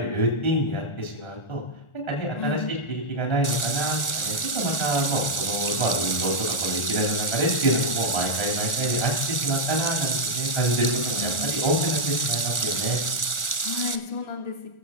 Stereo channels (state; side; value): late; right; 1.4 ms